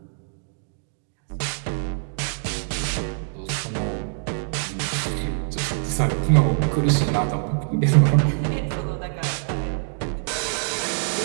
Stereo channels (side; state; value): left; silent; digital silence